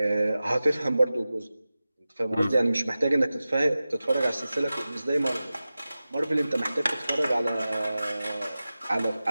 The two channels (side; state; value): both; inverted; correlation -0.95